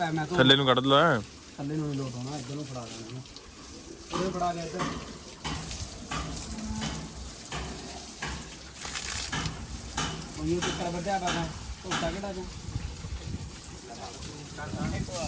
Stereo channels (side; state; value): both; identical; correlation 1.00